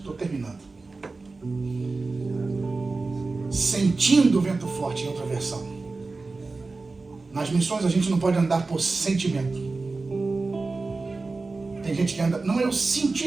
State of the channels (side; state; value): left; quieter; 3.7 dB